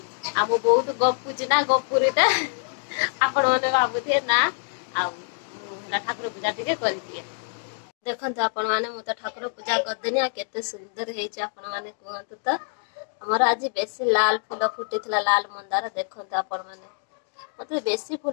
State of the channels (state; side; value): silent; right; 61 dB below the other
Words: आ मु बहुत गपुची ना, गपुरीटा आपण माने भाबुथे ना। आ ठाकुर पूजा टिके करि दिए। देखंतु आपण माने मु त ठाकुर पूजा कर देनी। आ केते सुंदर हेछि आपण माने कहंतु त। हमर आज बेसी लाल फूल फुटितला, लाल मंदार। देखंतु आपण माने मते बेसी